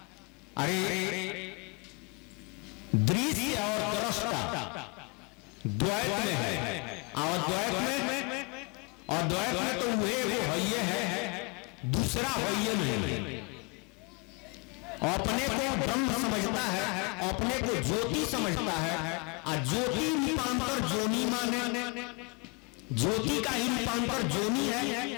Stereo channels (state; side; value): quieter; right; 30.9 dB